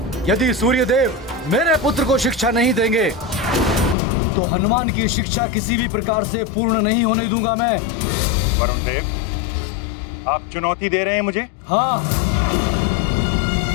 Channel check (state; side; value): drops out; right; at 4.0 s